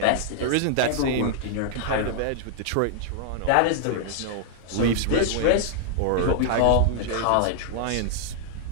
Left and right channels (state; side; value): different; both; correlation -0.01